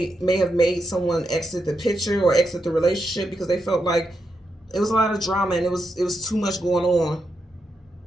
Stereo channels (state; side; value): normal; both; correlation 0.84